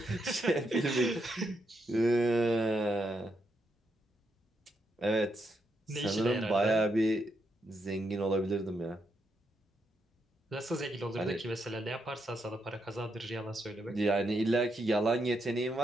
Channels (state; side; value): normal; both; correlation 0.80